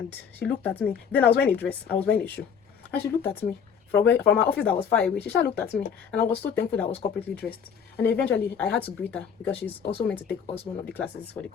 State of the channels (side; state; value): right; quieter; 7.1 dB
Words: she looked at me. Then I was wearing a dress. I was wearing a shoe. And she looked at me. From my office that was far away, she looked at me, and I was so thankful that I was corporately dressed. And eventually, I had to greet her because she's also meant to take us one of the classes for the